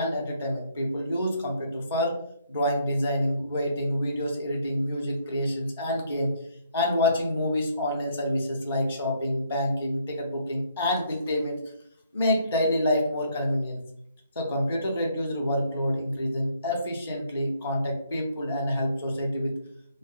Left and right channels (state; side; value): inverted; both; correlation -0.69